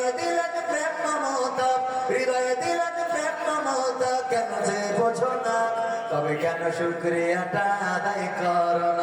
দিলেন প্রেম মমতা, হৃদয়ে দিলেন প্রেম মমতা, কেন যে বোঝো না? তবে কেন শুকরিয়াটা আদায় করো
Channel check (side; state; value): both; identical; correlation 1.00